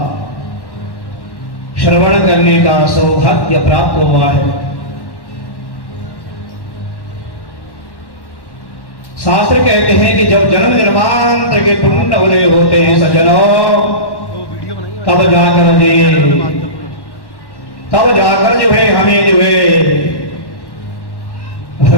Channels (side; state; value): right; late; 1.1 ms